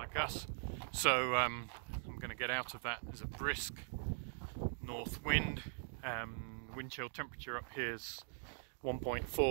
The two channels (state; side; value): silent; left; digital silence